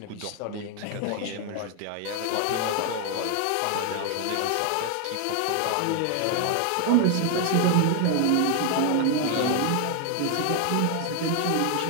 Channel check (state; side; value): different; both; correlation 0.00